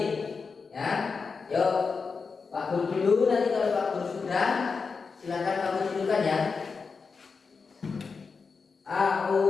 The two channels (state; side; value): quieter; right; 5.0 dB